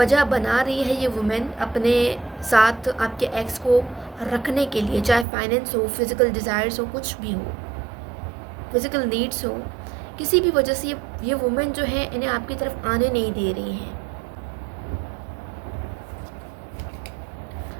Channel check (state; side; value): drops out; left; at 5.2 s